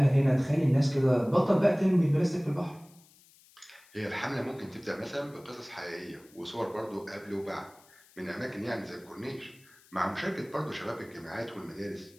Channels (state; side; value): noise; left; hiss, 27 dB below the sound